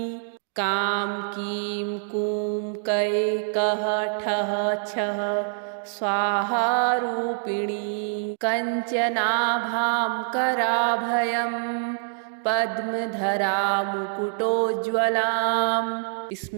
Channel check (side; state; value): left; silent; digital silence